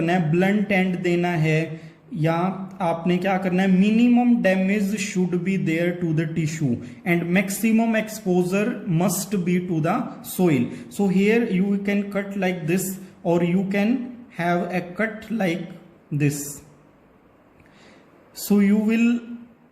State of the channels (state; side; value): identical; both; correlation 1.00